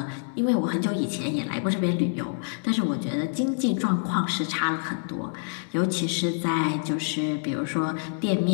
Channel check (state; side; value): silent; right; digital silence